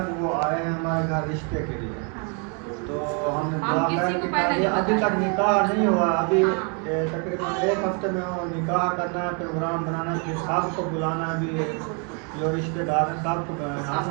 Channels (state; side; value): quieter; left; 37.4 dB